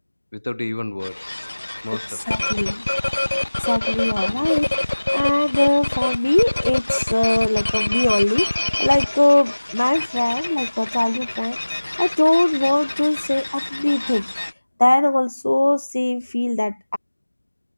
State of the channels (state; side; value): inverted; both; correlation -1.00